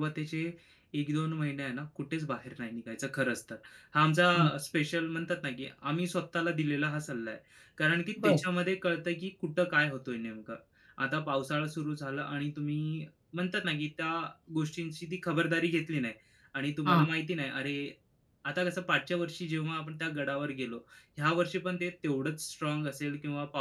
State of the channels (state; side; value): identical; both; correlation 1.00